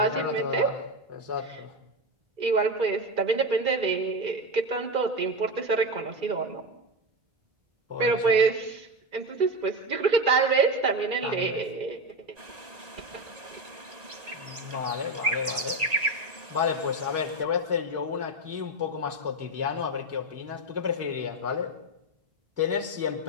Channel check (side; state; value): left; late; 1.9 ms